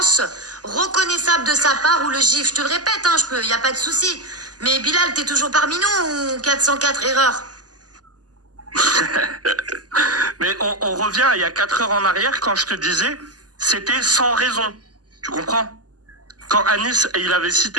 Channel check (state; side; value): late; left; 0.68 ms